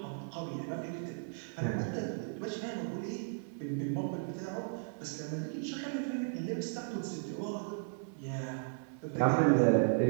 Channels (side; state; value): left; silent; digital silence